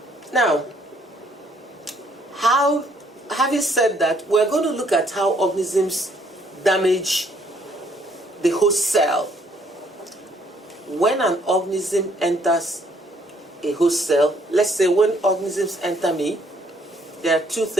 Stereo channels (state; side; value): normal; both; correlation 0.66